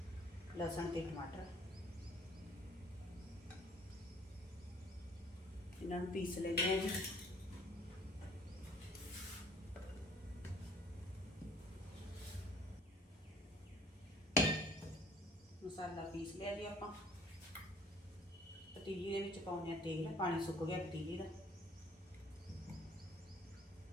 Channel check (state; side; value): normal; both; correlation 0.55